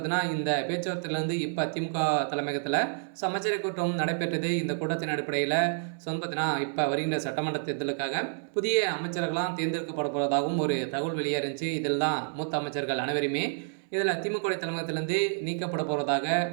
இந்த பேச்சுவார்த்தையிலேருந்து இப்போ திமுக தலைமையகத்தில் அமைச்சரவை கூட்டம் நடைபெற்றது. இந்த கூட்டத்தின் அடிப்படையில் பார்த்தீங்கன்னா இப்போ வருகின்ற சட்டமன்ற தேர்தலுக்காக புதிய அமைச்சர்கள்லாம் தேர்ந்தெடுக்கப்பட போவதாகவும் ஒரு தகவல் வெளியே இருந்துச்சு. இதில் தான் மூத்த அமைச்சர்கள் அனைவருமே இதில் திமுக தலைமையகத்திலேருந்து நீக்கப்பட போவதாக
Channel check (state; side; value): silent; left; 59 dB below the other